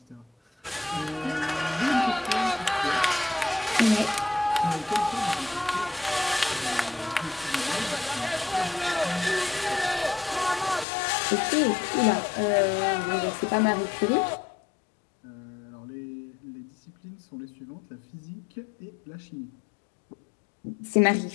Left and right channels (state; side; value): drops out; right; at 10.9 s